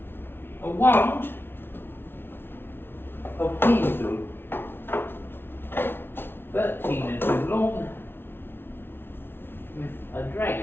A wand of hazel, 13 inches long, with a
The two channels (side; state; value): right; late; 0.11 ms